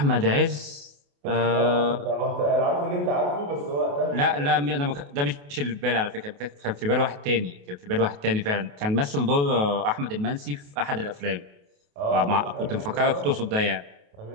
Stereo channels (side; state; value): left; late; 28 ms